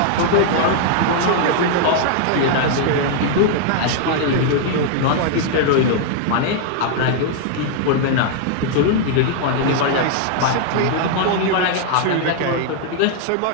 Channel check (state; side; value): different; both; correlation 0.00